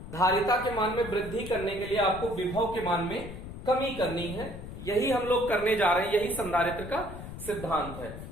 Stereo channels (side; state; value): left; noise; rumble, 11 dB below the sound